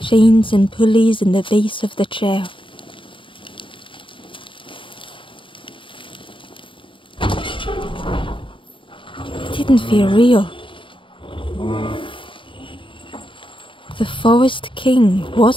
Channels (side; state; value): right; late; 0.25 ms